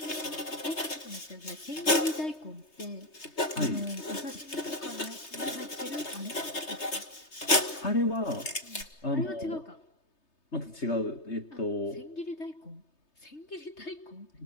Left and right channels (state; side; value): late; right; 3.3 ms